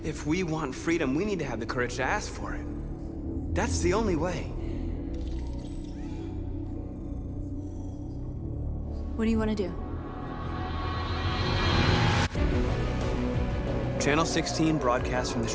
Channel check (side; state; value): both; identical; correlation 1.00